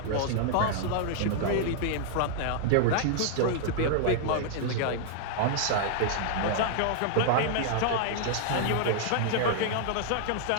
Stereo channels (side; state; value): both; different; correlation -0.01